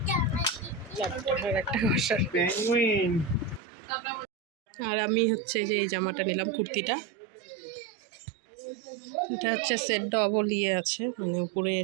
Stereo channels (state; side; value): drops out; left; at 3.6 s